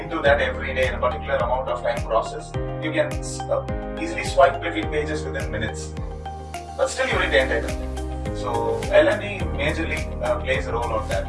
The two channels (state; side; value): identical; both; correlation 1.00